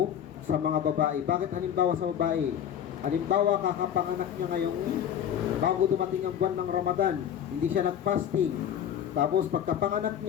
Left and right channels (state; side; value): quieter; right; 9.5 dB